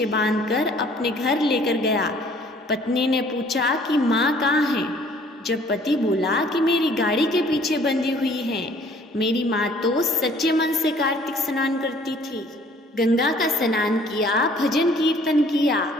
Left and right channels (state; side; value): normal; both; correlation 0.57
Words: बांधकर अपने घर लेकर गया, पत्नी ने पूछा कि माँ कहाँ है? जब पति बोला कि मेरी गाड़ी के पीछे बंधी हुई है, मेरी माँ तो सच्चे मन से कार्तिक स्नान करती थी, गंगा का स्नान किया, भजन कीर्तन किया,